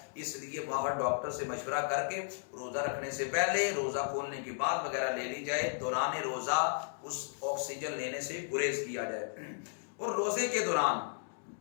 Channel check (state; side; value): silent; right; digital silence